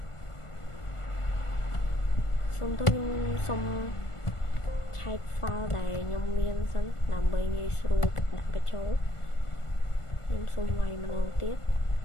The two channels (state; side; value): late; right; 1.4 ms